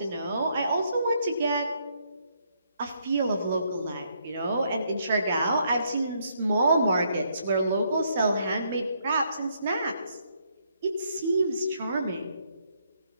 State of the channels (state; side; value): inverted; both; correlation -0.73